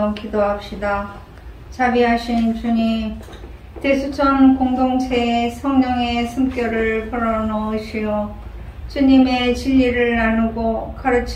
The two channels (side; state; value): both; identical; correlation 1.00